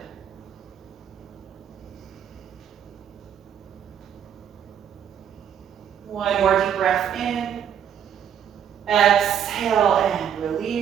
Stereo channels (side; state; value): left; quieter; 8.8 dB